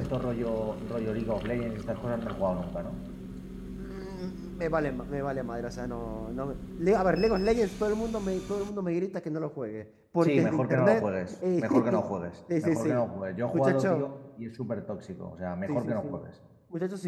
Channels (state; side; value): identical; both; correlation 1.00